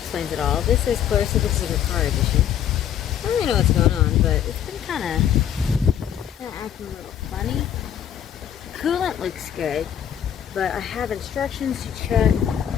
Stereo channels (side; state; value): right; quieter; 9.7 dB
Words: It All. This is Clarrisa, this is a car edition. I don't really know what's going on, but it's been kind of acting a little funny. Coolant looks good, but I have instructions to check.